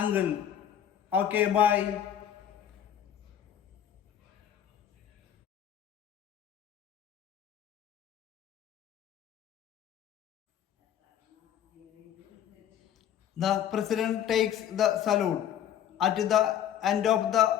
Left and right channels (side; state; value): right; quieter; 10.1 dB